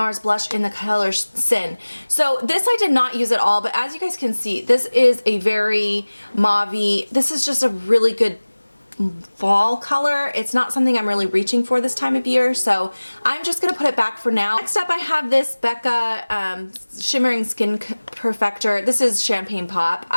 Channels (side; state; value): both; inverted; correlation -1.00